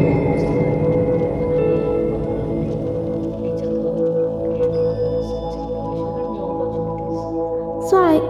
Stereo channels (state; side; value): identical; both; correlation 1.00